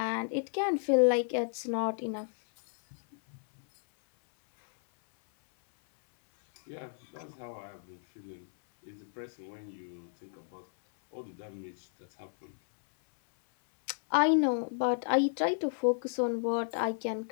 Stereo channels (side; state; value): right; silent; 56 dB below the other